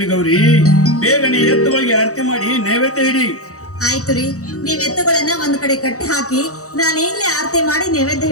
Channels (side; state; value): right; late; 0.65 ms